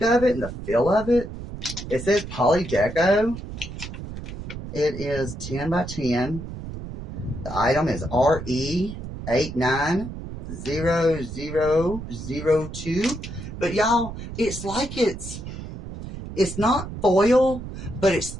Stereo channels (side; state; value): right; noise; rumble, 9 dB below the sound